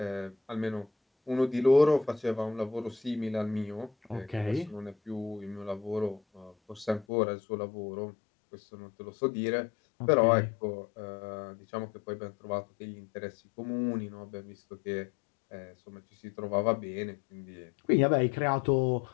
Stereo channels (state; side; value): drops out; right; at 7.1 s